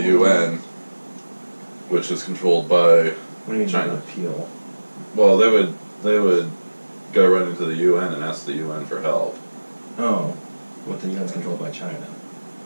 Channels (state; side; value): inverted; both; correlation -1.00